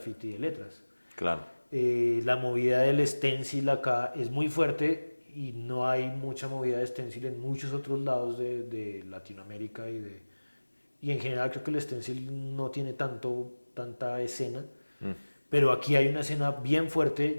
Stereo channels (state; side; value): inverted; both; correlation -1.00